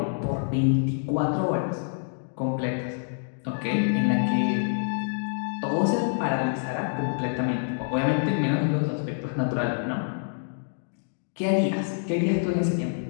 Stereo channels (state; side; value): silent; right; digital silence